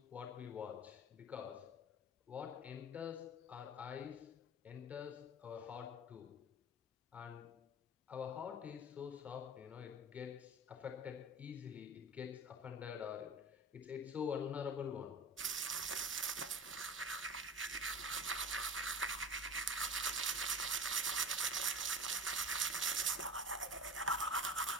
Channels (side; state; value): both; normal; correlation 0.32